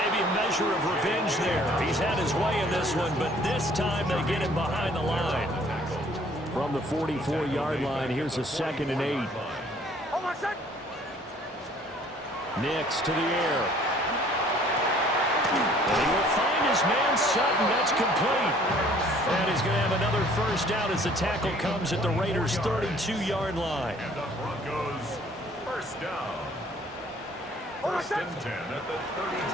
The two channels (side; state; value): both; normal; correlation 0.57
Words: a measure of revenge there. He's had his way in this one, but this time they get him behind the line. From the 44-yard line, here's a 2nd and 8. Nix to the air. And he will find his man Sutton. That's complete. And he's going to have another 1st down as the tackle comes at the Raiders' 32-yard line. And the Broncos 1st down. First and 10 at the